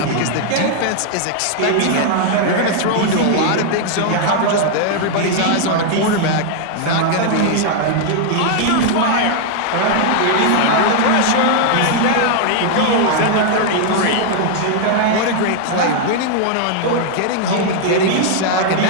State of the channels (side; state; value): both; different; correlation 0.00